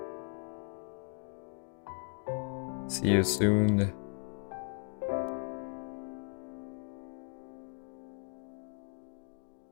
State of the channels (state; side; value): silent; right; 53 dB below the other